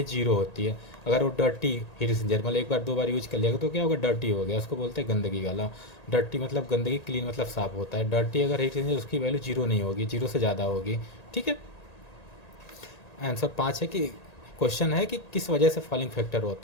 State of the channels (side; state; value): right; late; 1.8 ms